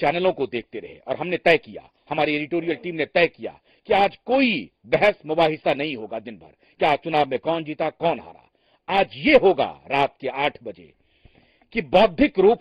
को देखते रहे और हमने तय किया, हमारी एडिटोरियल टीम ने तय किया कि आज कोई बहस मुबाहिसा नहीं होगा दिन भर, क्या चुनाव में कौन जीता कौन हारा। आज ये होगा रात के 8 बजे कि बौद्धिक रूप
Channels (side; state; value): both; identical; correlation 1.00